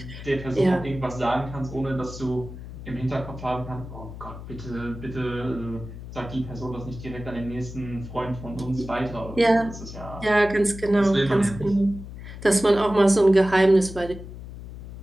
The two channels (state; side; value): noise; left; hum, 12 dB below the sound